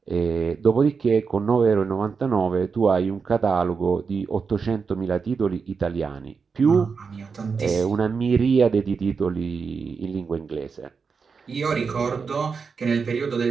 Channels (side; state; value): left; quieter; 5.4 dB